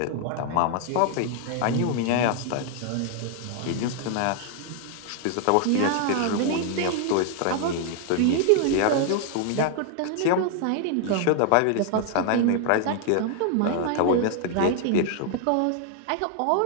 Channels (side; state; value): both; different; correlation 0.00